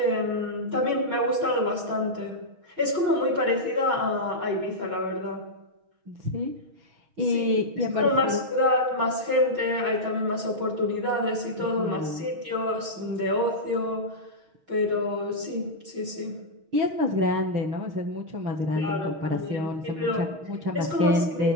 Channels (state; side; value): late; left; 6.3 ms